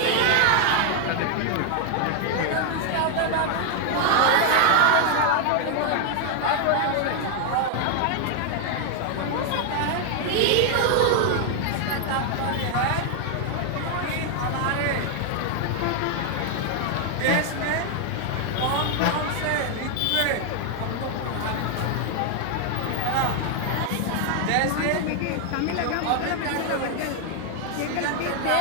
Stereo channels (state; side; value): different; both; correlation 0.00